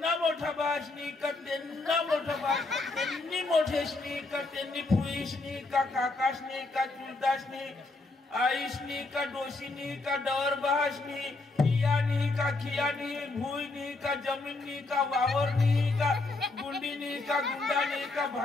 मोठा बहाशनी का त्यांना मोठा बहाश त्यांनी मोठेशनी का त्यांनी फुईशनी का काकाशनी का चुलताशनी आईशनी का डोशीनी का डवर बहाशनी कियानी का खियानी भुईनी का जमीननी का वावरनी का गुंडीनी का गुंडानी का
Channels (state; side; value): quieter; right; 3.3 dB